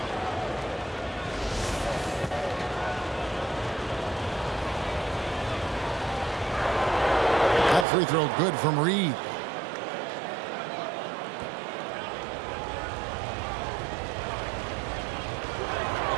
Free throw good from Reed.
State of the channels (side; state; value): left; drops out; at 7.9 s